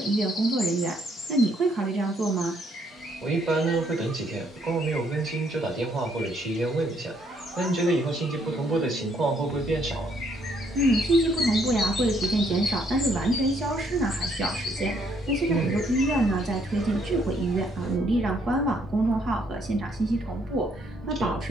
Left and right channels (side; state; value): both; normal; correlation 0.69